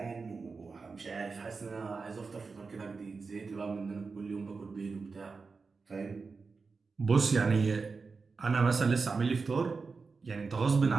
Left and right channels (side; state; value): left; quieter; 4.5 dB